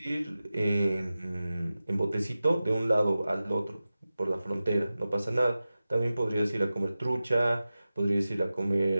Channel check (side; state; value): both; inverted; correlation -0.95